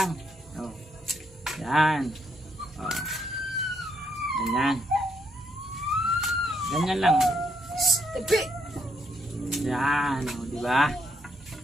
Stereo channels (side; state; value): both; normal; correlation 0.75